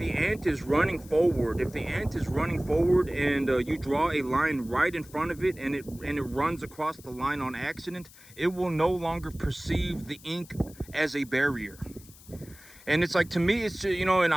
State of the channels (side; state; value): left; noise; hiss, 22 dB below the sound